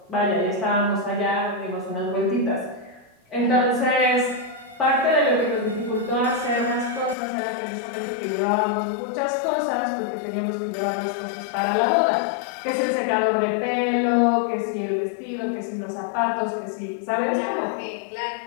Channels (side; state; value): right; drops out; at 7.2 s